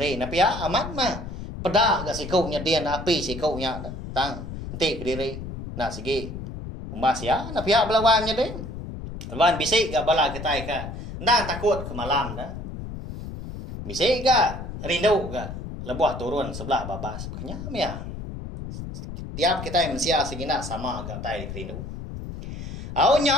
Tapi ya amat mah. Pedak gak sikuknya dia api sikuknya tang nanti ke diri. Nah segi umbas ya, na pihak belawannya deh. Lawan bisik gak bala kita ka. Ndak takut ke malam dah. Bisik gak rindu gak lebuh turun sebelah babas. Kenyam ya. Tiap kita yang mensia segina sama gak tai rindu. Au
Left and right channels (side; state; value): left; noise; rumble, 9 dB below the sound